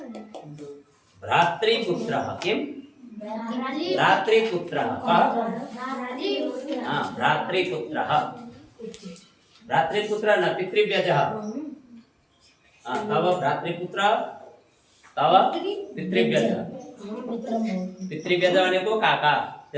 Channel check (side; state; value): both; identical; correlation 1.00